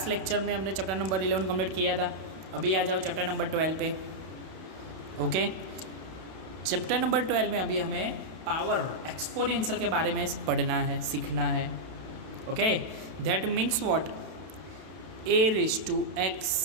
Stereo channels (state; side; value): late; left; 32 ms